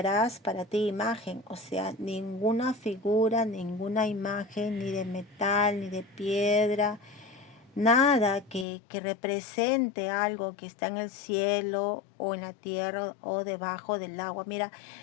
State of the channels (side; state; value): right; drops out; at 8.7 s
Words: para ti imagen, o sea, ninguna figura, ninguna imagen, ni de metal, ni de piedra, nada que represente algo que está en el cielo o en la tierra o debajo del agua. Mira,